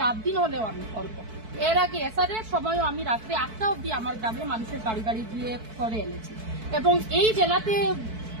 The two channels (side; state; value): left; late; 4.6 ms